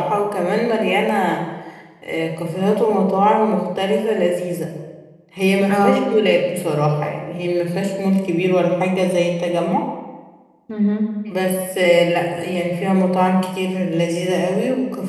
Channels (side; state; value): both; identical; correlation 1.00